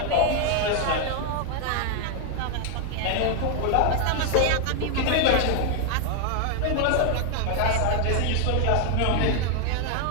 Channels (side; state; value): both; different; correlation 0.00